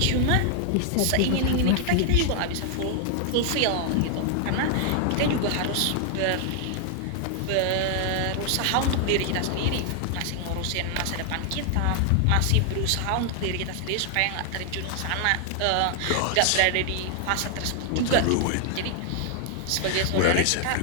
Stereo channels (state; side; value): different; both; correlation 0.00